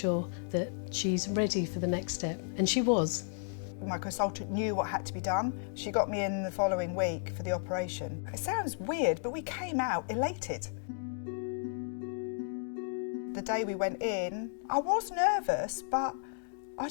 that she's ready for the next step. And she was. My consultant knew what had to be done. She got me in the following week for the operation. It sounds weird, but we came out elated. The day we went in, I was nervous, but I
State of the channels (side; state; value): right; silent; digital silence